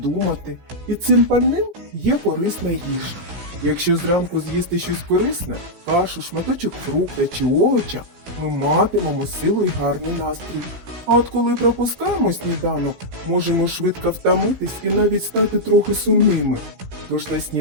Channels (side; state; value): left; late; 16 ms